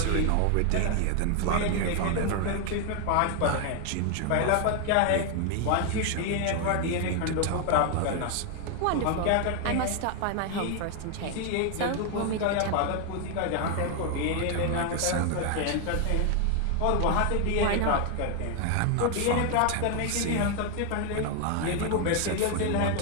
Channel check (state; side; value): different; both; correlation 0.01